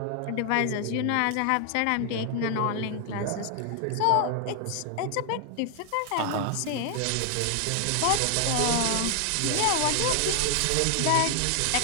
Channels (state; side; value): different; both; correlation 0.00